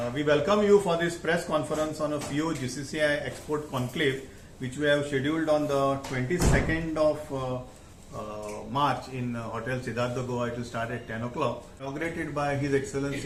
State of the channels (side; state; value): both; identical; correlation 1.00